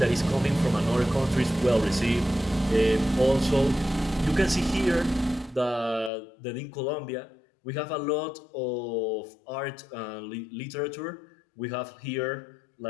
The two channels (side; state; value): right; drops out; at 6.1 s